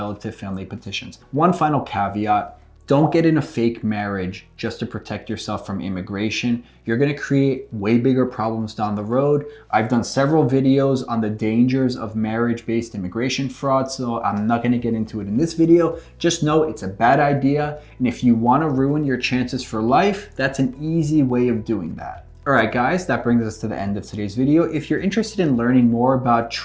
family petitions. One final caveat. Don't get in a fake marriage just to protect yourself from immigration. You're going to create way bigger problems down the road. I've done several videos on the dangers of marriage-based immigration fraud, so I'm not going to get into it in this video. Just know it's a bad idea, and if you want to ruin your chances for life, that's an easy way of doing that. Alright guys, that brings us to the end of today's video. If you're interested in learning more about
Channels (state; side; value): identical; both; correlation 1.00